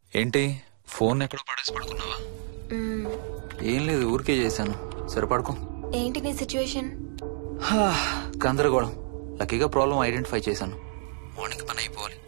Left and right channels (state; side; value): silent; left; digital silence